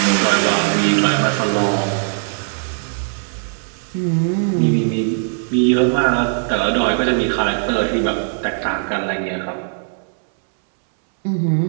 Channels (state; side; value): silent; left; 67 dB below the other